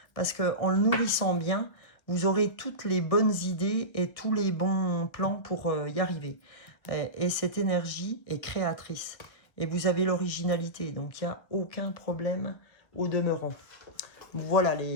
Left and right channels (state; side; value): late; right; 1.4 ms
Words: parce qu'en le nourrissant bien, vous aurez toutes les bonnes idées et tous les bons plans pour y arriver. Et cette énergie est créatrice. Et vous avez l'originalité, donc il n'y a aucun problème au demeurant. Voilà